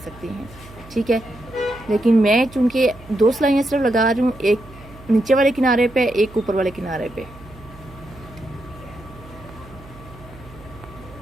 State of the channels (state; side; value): noise; right; hum, 20 dB below the sound